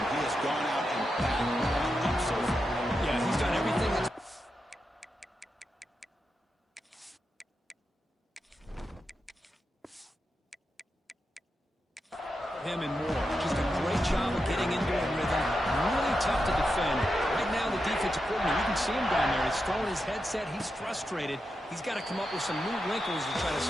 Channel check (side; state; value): both; normal; correlation 0.87